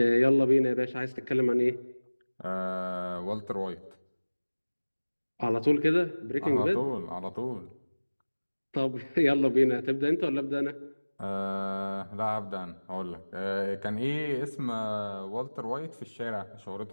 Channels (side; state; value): both; inverted; correlation -1.00